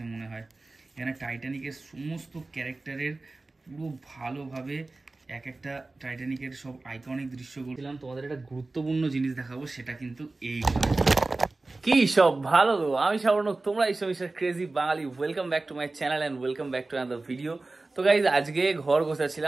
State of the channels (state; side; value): quieter; left; 3.3 dB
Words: মনে হয়। এখানে টাইটানিকের সমস্ত ক্যারেক্টারের পুরো ভালোভাবে এক একটা টাইটানিকের সব আইকনিক দৃশ্যগুলো দিলাম। তোমাদের একটা গুরুত্বপূর্ণ জিনিস দেখাবো, সেটা কিন্তু এই কার্ড। কি সব ভালো, আমি সাবর্ণক, তোমরা এই সব crazy Bangali. Welcome back to my channel and welcome back to another video. তো গাইজ, আজকে ঘর